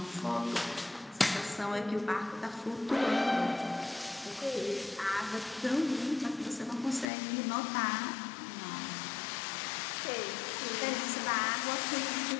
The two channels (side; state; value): right; drops out; at 7.1 s